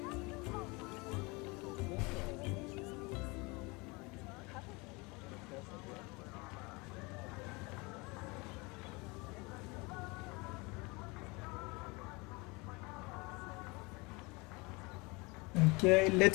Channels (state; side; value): quieter; right; 26.4 dB